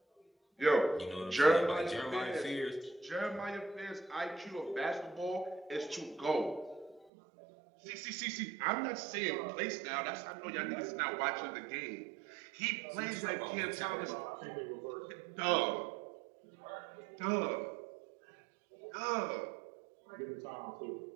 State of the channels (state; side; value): drops out; left; at 7.1 s